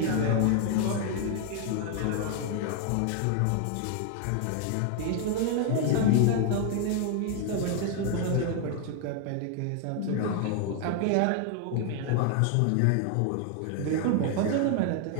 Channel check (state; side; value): different; both; correlation 0.00